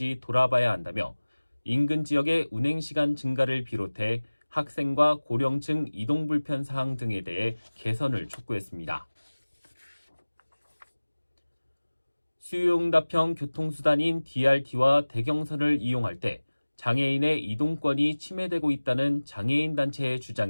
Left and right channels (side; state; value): both; inverted; correlation -1.00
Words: 돌아봐야 한다며 인근 지역의 운행시간 증가를 비롯해 학생과 고령층 이동 불편 사항 등에 대해 개선을 촉구했습니다. 수요응답형 교통수단인 DRT와 대경선을 이용할 때 장애인의 이동권이 침해되고 있다는 장애인 단체의